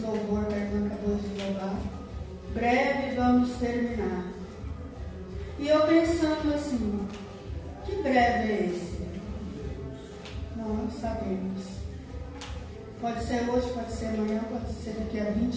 que a irmã acabou de louvar. Breve vamos terminar. E eu pensando assim, que breve é esse? Não sabemos. Pode ser hoje, pode ser amanhã, pode ser daqui a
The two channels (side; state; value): both; identical; correlation 1.00